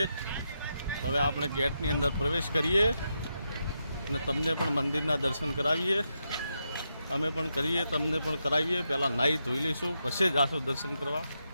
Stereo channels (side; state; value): both; inverted; correlation -0.85